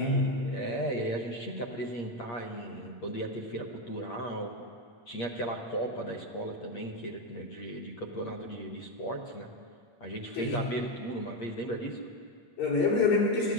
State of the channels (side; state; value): right; late; 8.5 ms